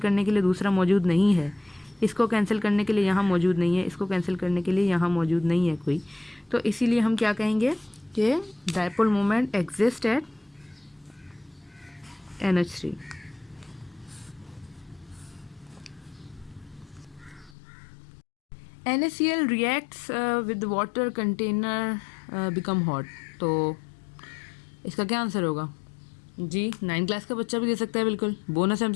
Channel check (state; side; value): drops out; right; at 17.6 s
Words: के लिए दूसरा मौजूद नहीं है, इसको कैंसिल करने के लिए यहाँ मौजूद नहीं है, इसको कैंसिल करने के लिए यहाँ मौजूद नहीं है कोई, तो इसीलिए हम क्या कहेंगे कि dipole moment exist at NH3। NaCl reacts with the water container become hot। तो इसका क्या आंसर होगा जी? 9 क्लास का बच्चा भी दे सकता है, बिल्कुल बोनस